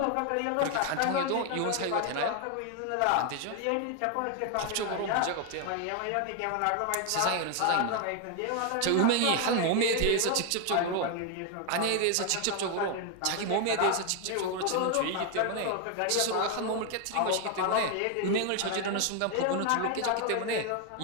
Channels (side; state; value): both; different; correlation 0.01